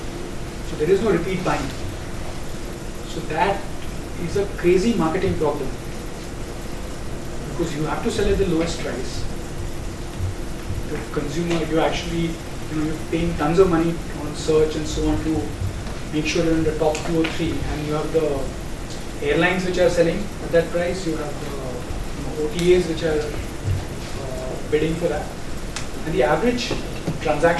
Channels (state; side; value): identical; both; correlation 1.00